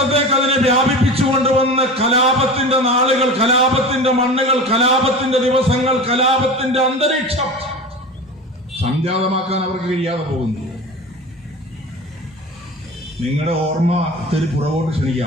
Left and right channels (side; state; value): both; normal; correlation 0.32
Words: അതിനെ വ്യാപിപ്പിച്ചു കൊണ്ടുവന്ന് കലാപത്തിന്റെ നാളുകൾ, കലാപത്തിന്റെ മണ്ണുകൾ, കലാപത്തിന്റെ ദിവസങ്ങൾ, കലാപത്തിന്റെ അന്തരീക്ഷം സംജാതമാക്കാൻ അവർക്ക് കഴിയാതെ പോകുന്നു. നിങ്ങളുടെ ഓർമ്മ ഇത്തിരി പുറകോട്ട്